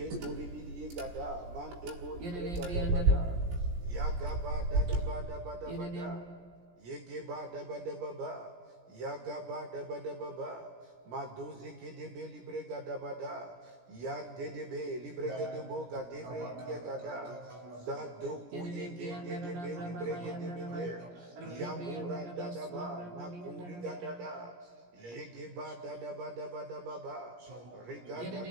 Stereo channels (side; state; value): left; late; 17 ms